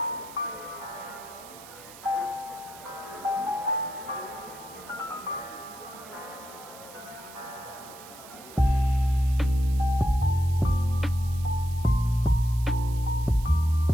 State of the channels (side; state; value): right; noise; hiss, 18 dB below the sound